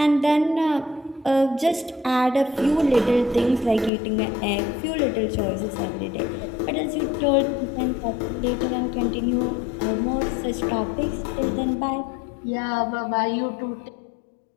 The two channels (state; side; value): drops out; right; at 3.9 s